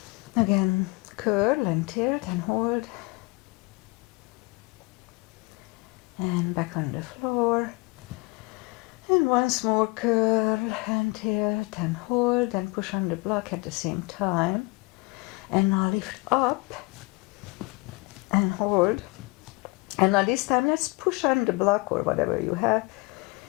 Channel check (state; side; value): quieter; right; 25.5 dB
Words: Again, curl and tilt and hold. And back on the floor. And once more curl and tilt and hold and push on the block at the same time. And now lift up and hold. And now this time let's push on the block or whatever you have.